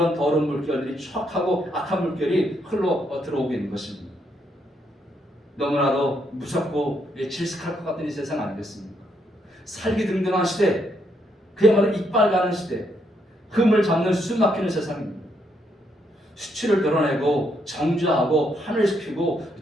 더러운 물결들이 추악하고 악한 물결이 흘러 들어오고 있는 것입니다. 너무나도 무섭고 질색할 것 같은 이 세상 아니겠습니까? 살기등등한 시대, 그야말로 이빨 가는 시대, 흠을 잡는 숨 막히는 세상입니다. 수치를 드러내고 정죄하고 환멸시키고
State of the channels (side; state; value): both; normal; correlation 0.75